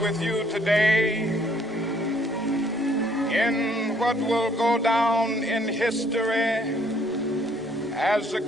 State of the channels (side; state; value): both; normal; correlation 0.64